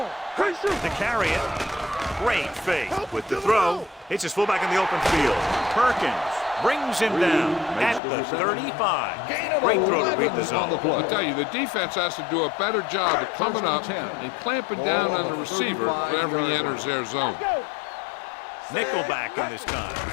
Play shoot. To carry it. Great fake. With the throw. Hits his fullback in the open field. Perkins brings him down at the 35. Great throw to beat the zone. I tell you, the defense has to do a better job of coming up and clamping down on the receiver whenever he enters their zone. Nickelback in this time.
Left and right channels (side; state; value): right; drops out; at 8.0 s